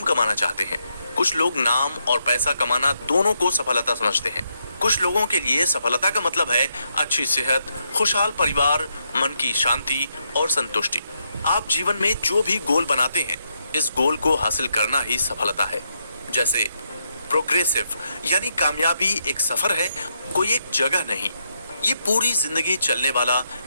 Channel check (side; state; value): both; inverted; correlation -0.79